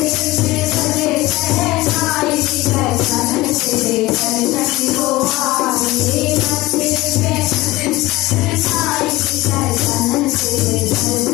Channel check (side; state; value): right; quieter; 19.0 dB